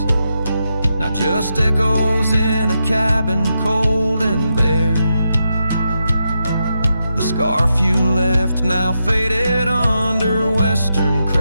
now just echoes in a cabin cold and bare. The scarf you left now faded under western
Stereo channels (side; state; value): both; inverted; correlation -0.85